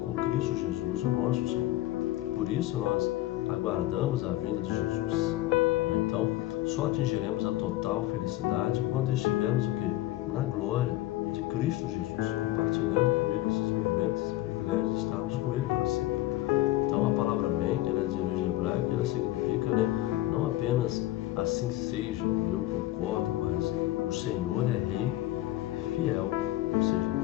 Cristo Jesus, o nosso Senhor. Por isso nós aguardamos a vinda de Jesus. Então, só atingiremos a total felicidade quando estivermos o quê? Na glória de Cristo Jesus, compartilhando com Ele esses momentos, esse privilégio de estarmos com Ele para sempre. Então, a palavra amém, ela é de origem hebraica, ela significa, né, não apenas assim seja, eu concordo, mas o Senhor é Rei fiel, ou seja,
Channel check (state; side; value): quieter; right; 16.1 dB